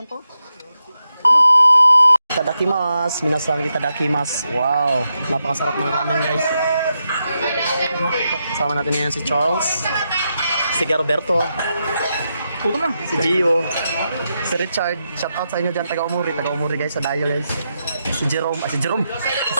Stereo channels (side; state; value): both; inverted; correlation -0.85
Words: to. Itadakimasu, minasang itadakimasu. Wow, napakasarap ng ramen guys. Kasama natin ngayon si Charles, si Roberto, Puto na. si Gio, si Richard. Shout out sa inyo dyan, taga-umuri guys, sa Dayo guys. Si Jerome,